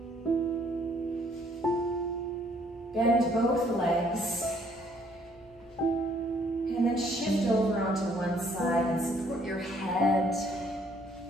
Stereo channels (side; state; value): both; normal; correlation 0.64